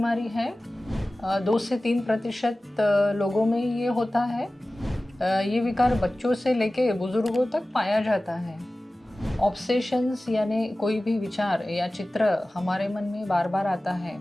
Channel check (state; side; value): normal; both; correlation 0.97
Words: है। 2 से 3% लोगों में ये होता है। ये विकार बच्चों से लेके बुजुर्गों तक पाया जाता है। ऑब्सेशंस यानी कोई भी विचार या चित्र हमारे मन में बार बार आता है